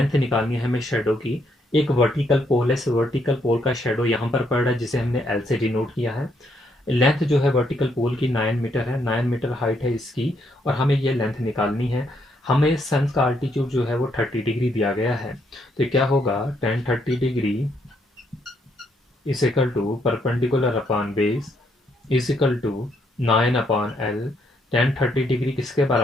निकालनी है हमें शेडो की। एक वर्टिकल पोल है, वर्टिकल पोल का शेडो यहाँ पर पड़ रहा है जिसे हमने एल से डिनोट किया है। लेंथ जो है वर्टिकल पोल की 9 मीटर है, 9 मीटर हाइट है इसकी, और हमें ये लेंथ निकालनी है। हमें सन का आल्टीट्यूड जो है वो 30 डिग्री दिया गया है, तो क्या होगा, tan 30 degree is equal to perpendicular upon base is equal to 9 upon L. tan 30 degree किसके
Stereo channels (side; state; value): both; normal; correlation 0.74